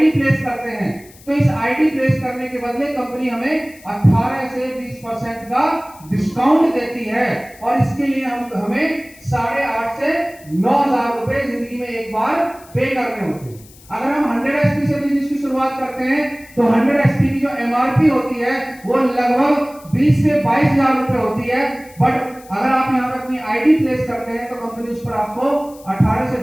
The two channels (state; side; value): noise; left; hiss, 24 dB below the sound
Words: प्लेस करते हैं तो इस आईडी प्लेस करने के बदले कंपनी हमें 18 से 20% का डिस्काउंट देती है। और इसके लिए हमें 8,500 से 9,000 रुपए जिंदगी में एक बार पे करने होते हैं। अगर हम 100 एसपी से बिजनेस की शुरुआत करते हैं तो 100 एसपी की जो एमआरपी होती है वो लगभग 20 से 22,000 रुपए होती है। बट अगर आप यहाँ पे अपनी आईडी प्लेस करते हैं तो कंपनी उस पर आपको 18 से